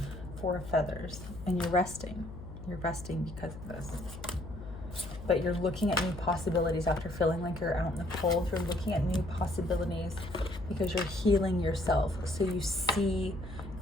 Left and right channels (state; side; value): noise; left; hum, 12 dB below the sound